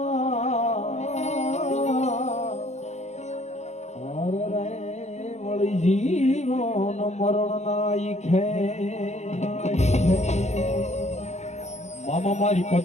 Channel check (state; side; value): late; right; 0.33 ms